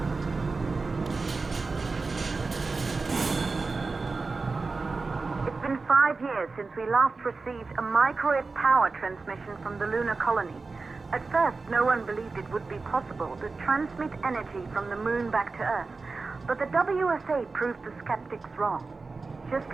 It's been 5 years since we last received a microwave power transmission from the lunar colony. At first, no one believed it would be possible to transmit energy from the moon back to Earth. But the WSA proved the skeptics wrong. Just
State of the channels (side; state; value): left; quieter; 4.0 dB